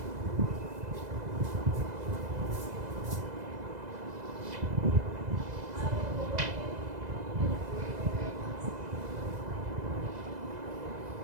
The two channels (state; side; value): late; left; 2.0 ms